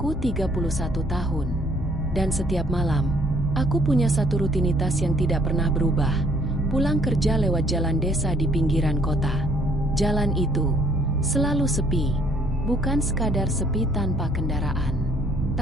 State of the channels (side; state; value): both; normal; correlation 0.62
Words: 31 tahun, dan setiap malam, aku punya satu rutinitas yang tidak pernah berubah, pulang kerja lewat jalan desa di pinggiran kota. Jalan itu selalu sepi, bukan sekadar sepi tanpa kendaraan,